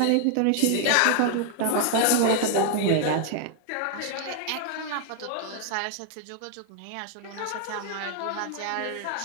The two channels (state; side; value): different; both; correlation 0.00